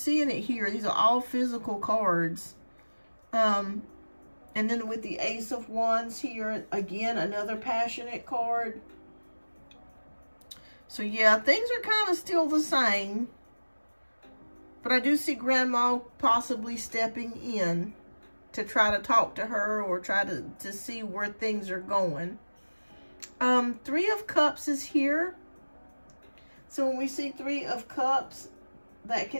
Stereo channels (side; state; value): both; inverted; correlation -1.00